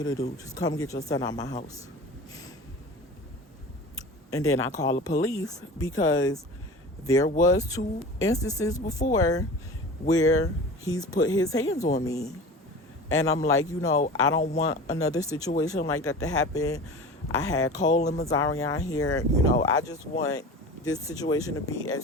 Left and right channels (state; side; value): normal; both; correlation 0.35